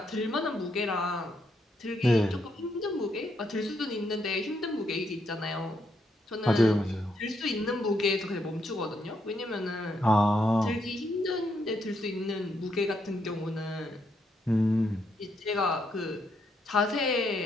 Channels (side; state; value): both; normal; correlation 0.77